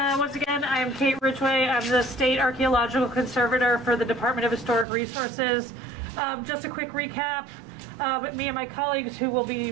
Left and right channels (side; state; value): left; drops out; at 4.9 s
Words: once again, I am Kate Ridgway. I'm the State Archaeological Conservator for the Department of Historic Resources. Just a quick recap. Me and my colleagues, who will